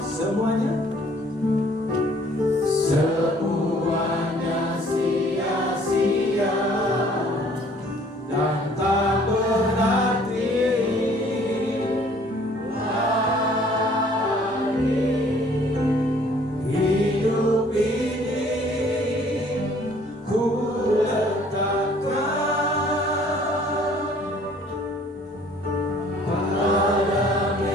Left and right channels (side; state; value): both; normal; correlation 0.57